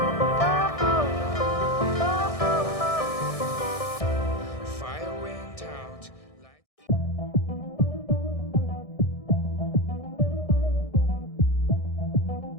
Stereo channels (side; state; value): right; late; 1.6 ms